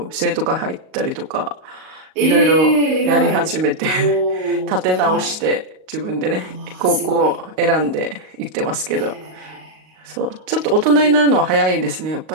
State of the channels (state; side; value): late; left; 38 ms